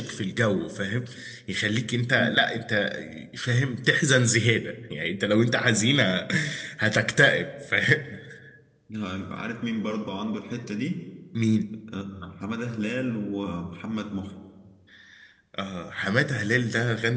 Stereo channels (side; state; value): both; identical; correlation 1.00